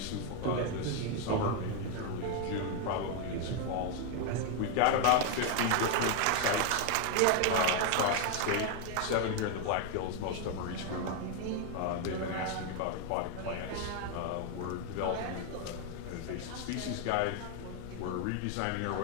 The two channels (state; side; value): different; both; correlation 0.01